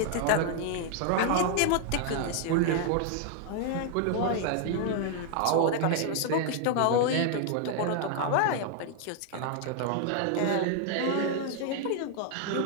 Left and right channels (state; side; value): different; both; correlation 0.00